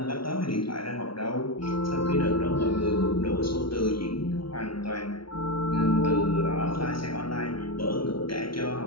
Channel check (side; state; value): right; late; 0.74 ms